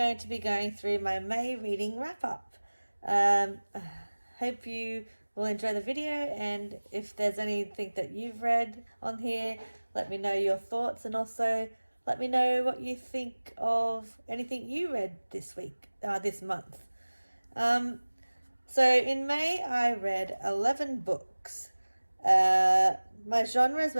to be going through my May reading wrap up. Hope you will enjoy the video, and if there's anything that you've read on here, let me know your thoughts, and also let me know what you think of anything you read this month. So in May I read 11 books. My genres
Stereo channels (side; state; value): both; inverted; correlation -1.00